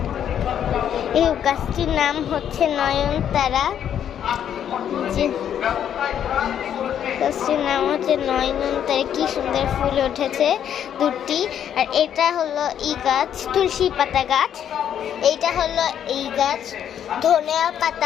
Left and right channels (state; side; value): quieter; right; 9.5 dB